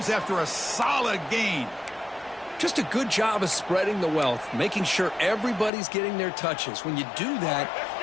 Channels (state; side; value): drops out; right; at 5.7 s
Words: after a solid gain. Just a good job of spreading the wealth, making sure everybody's getting their touches. When you do that,